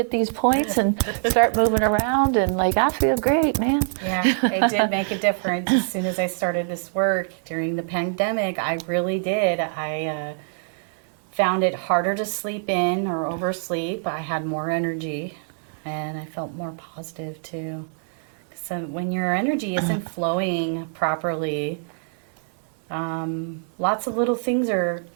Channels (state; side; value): silent; left; digital silence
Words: these points and start moving around and I feel great, man. Yeah, it did make a difference. As soon as I started this work during the pandemic, I really did. I found it harder to sleep in or oversleep. I had more energy, and I felt more positive too. So when your energy isn't flowing properly, lots of little things are